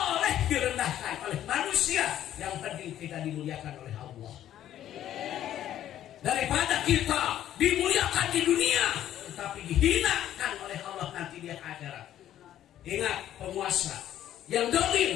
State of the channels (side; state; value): right; quieter; 11.7 dB